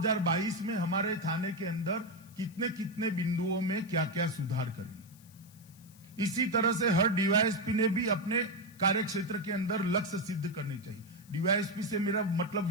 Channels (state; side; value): noise; left; hiss, 25 dB below the sound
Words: में हमारे थाने के अंदर कितने कितने बिंदुओं में क्या क्या सुधार करेंगे। इसी तरह से हर डीवाईएसपी ने भी अपने कार्य क्षेत्र के अंदर लक्ष्य सिद्ध करने चाहिए। डीवाईएसपी से मेरा मतलब